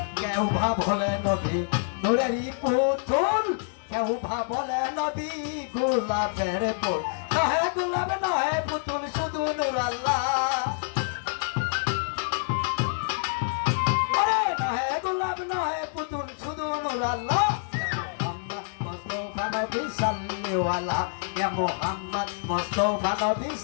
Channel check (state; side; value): silent; right; digital silence